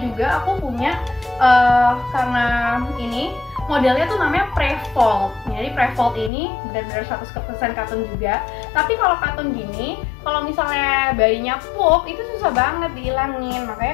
aku punya karena ini modelnya tuh namanya pre-fold. Jadi pre-fold ini benar-benar 100% katun juga. Tapi kalau katun gini, kalau misalnya bayinya pup, itu susah banget dihilangin.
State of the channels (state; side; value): drops out; right; at 6.3 s